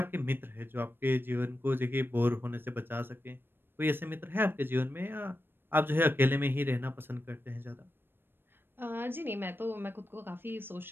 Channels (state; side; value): late; left; 0.099 ms